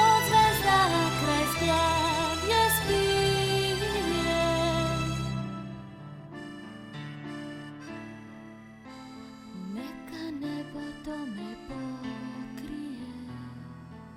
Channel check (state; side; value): identical; both; correlation 1.00